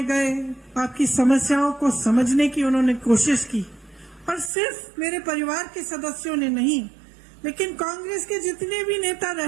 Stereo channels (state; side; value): drops out; left; at 4.5 s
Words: गए, आपकी समस्याओं को समझने की उन्होंने कोशिश की। और सिर्फ मेरे परिवार के सदस्यों ने नहीं, लेकिन कांग्रेस के जितने भी नेता